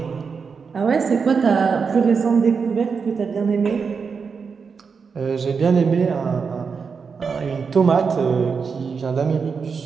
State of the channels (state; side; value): quieter; left; 5.6 dB